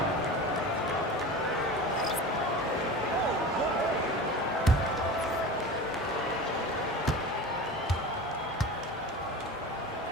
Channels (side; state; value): both; normal; correlation 0.32